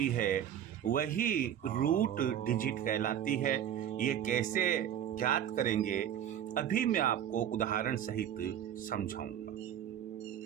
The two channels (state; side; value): quieter; left; 10.1 dB